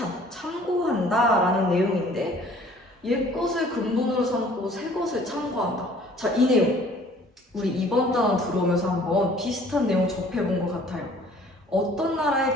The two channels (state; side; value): normal; both; correlation 0.54